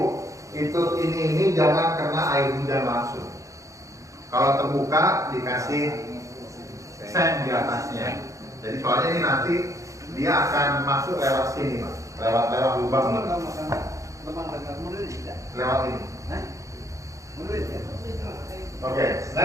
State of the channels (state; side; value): late; left; 0.15 ms